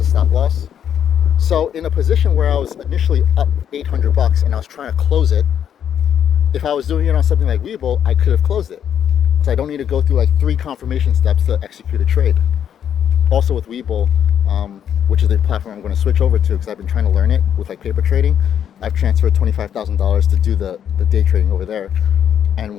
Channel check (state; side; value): quieter; right; 9.0 dB